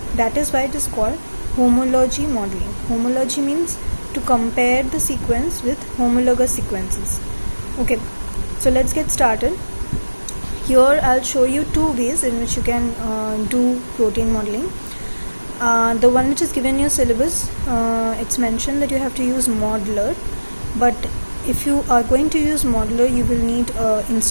That is why it is called homology modeling. Homology means to compare the sequence with homologous sequences. Okay, so let's get started. Here I'll show you two ways in which you can do protein modeling. The one which is given in your syllabus, it's mentioned that you have to use modeler, but if you are going to use modeler, you will need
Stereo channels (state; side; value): inverted; both; correlation -1.00